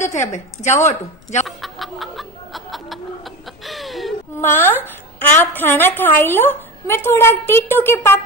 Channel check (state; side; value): noise; left; rumble, 28 dB below the sound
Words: थे, अब जाओ तू जाओ। माँ आप खाना खाई लो, मैं थोड़ा टीटू के